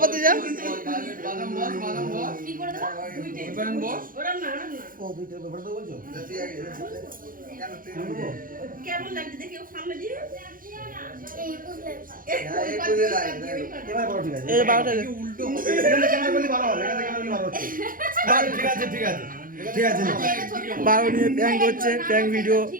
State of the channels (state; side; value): late; left; 0.40 ms